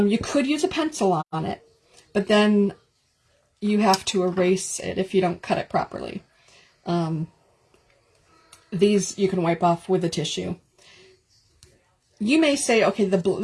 could use a pencil on it, but then you have to erase it if you don't cut it properly. These you can wipe off with a tissue. You may say, okay,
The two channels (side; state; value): both; identical; correlation 1.00